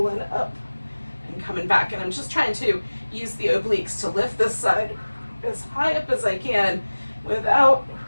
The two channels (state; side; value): inverted; both; correlation -1.00